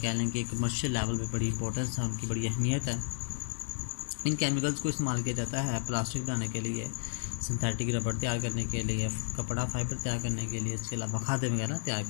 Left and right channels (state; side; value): silent; right; digital silence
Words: लें कि कमर्शियल लेवल पे बड़ी इंपॉर्टेंस है, उनकी बड़ी अहमियत है। इन केमिकल्स को इस्तेमाल किया जाता है प्लास्टिक बनाने के लिए, सिंथेटिक रबड़ तैयार करने के लिए, कपड़ा फाइबर तैयार करने के लिए, इसके अलावा खाद्य वगैरह तैयार